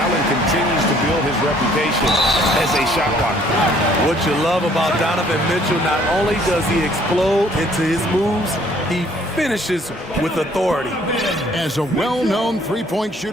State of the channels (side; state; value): both; normal; correlation 0.60